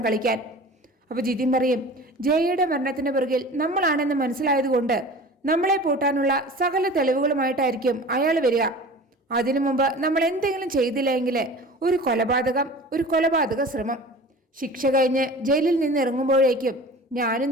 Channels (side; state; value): both; normal; correlation 0.39